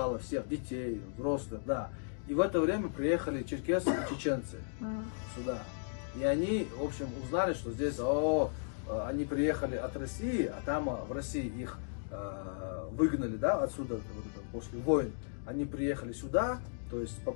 всех, детей, взрослых, да. И в это время приехали черкесы и чеченцы сюда. И они, в общем, узнали, что здесь, они приехали от России, а там в России их выгнали, да, отсюда после войн. Они приехали сюда, то есть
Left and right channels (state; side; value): silent; right; digital silence